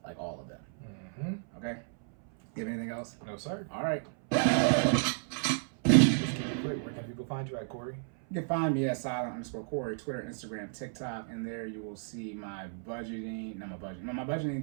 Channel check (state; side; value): silent; left; 56 dB below the other